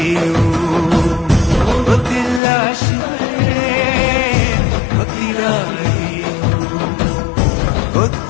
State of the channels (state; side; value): drops out; right; at 2.4 s